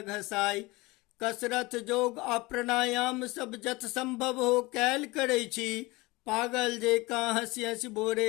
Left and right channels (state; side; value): quieter; right; 22.6 dB